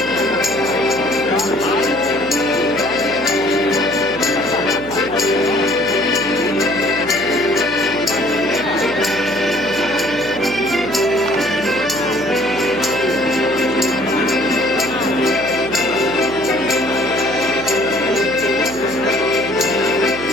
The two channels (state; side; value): noise; right; hum, 14 dB below the sound